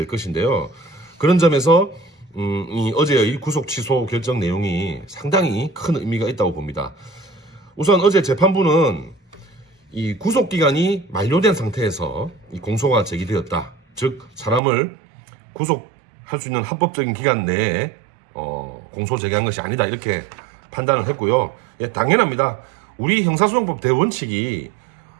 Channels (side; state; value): left; drops out; at 14.6 s